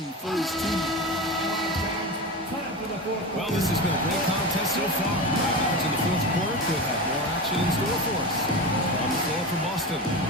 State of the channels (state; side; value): normal; both; correlation 0.24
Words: for his team. Well, this has been a great contest so far. Now to the fourth quarter, could have more action in store for us. On the floor for Boston,